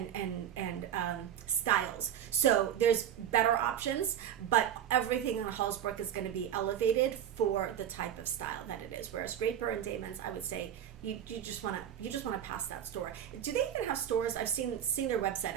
styles. So there's better options, but everything on Hallsberg is going to be elevated for the type of style that it is. Whereas Draper and Damon's, I would say, you just want to pass that store. Do they even have stores? I've seen their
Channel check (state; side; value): quieter; left; 9.8 dB